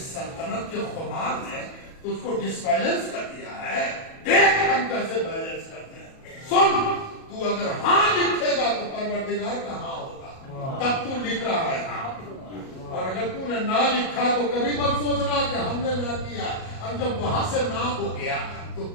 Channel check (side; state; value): right; late; 37 ms